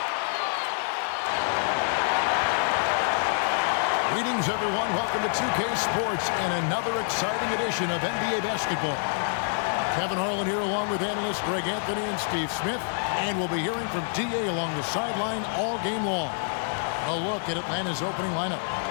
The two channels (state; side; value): silent; right; digital silence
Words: Greetings, everyone. Welcome to 2K Sports and another exciting edition of NBA basketball. Kevin Harlan here along with analysts Greg Anthony and Steve Smith. And we'll be hearing from DA along the sideline all game long. A look at Atlanta's opening lineup.